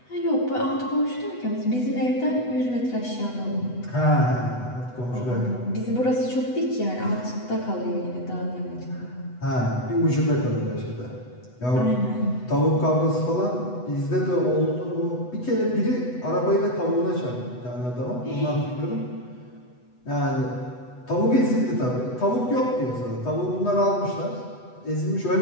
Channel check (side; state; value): right; late; 8.1 ms